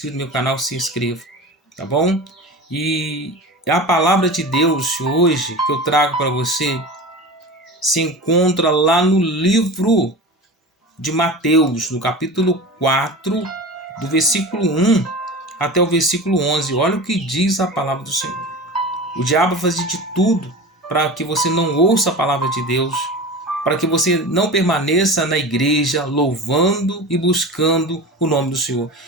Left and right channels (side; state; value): both; normal; correlation 0.32